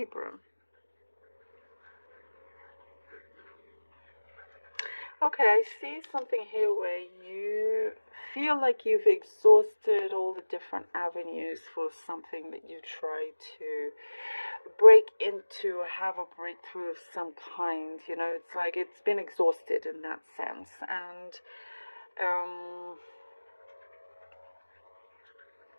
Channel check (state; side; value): inverted; both; correlation -1.00